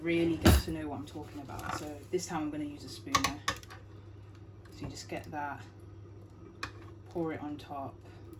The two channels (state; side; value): identical; both; correlation 1.00